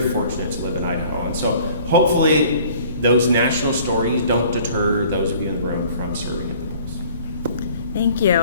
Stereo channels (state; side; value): inverted; both; correlation -0.53